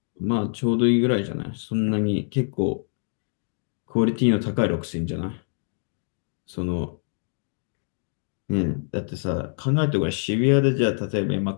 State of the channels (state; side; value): silent; right; digital silence